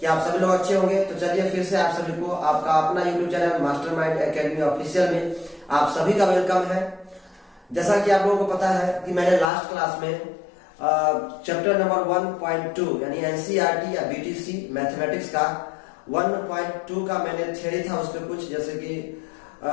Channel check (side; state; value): right; drops out; at 9.5 s